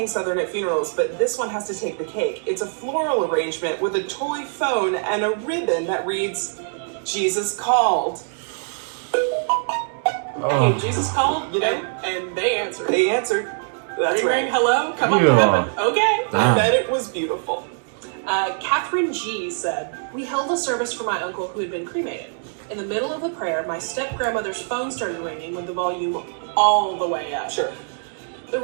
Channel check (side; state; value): left; silent; digital silence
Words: Southern at funerals, but this one has to take the cake. It's a floral arrangement with a toy phone and a ribbon that reads, Jesus called. Hey, Jesus called, You know? and they answered. They answered. That's Ring, right. ring, hello, come up to Yeah. heaven. Okay. I bet it was beautiful. Catherine G said, we held a service for my uncle who had been cremated. In the middle of the prayer, my step-grandmother's phone started ringing with the volume all the way up. Sure. The